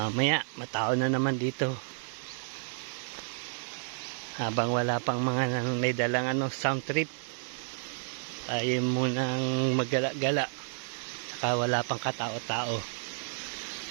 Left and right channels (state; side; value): silent; left; 57 dB below the other